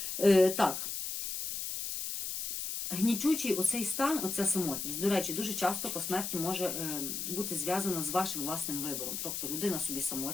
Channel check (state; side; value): noise; left; hiss, 4 dB below the sound